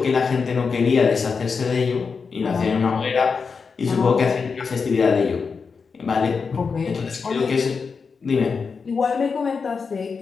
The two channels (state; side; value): quieter; right; 5.3 dB